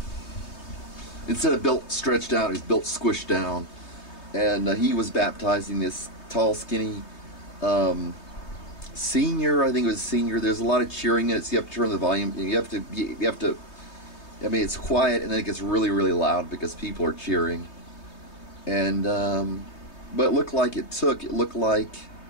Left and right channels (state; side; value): late; right; 3.2 ms